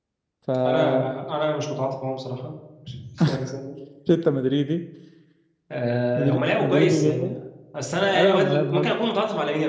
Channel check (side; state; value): both; identical; correlation 1.00